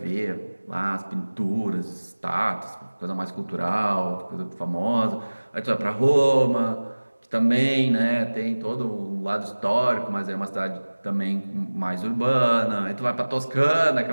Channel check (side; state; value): both; inverted; correlation -1.00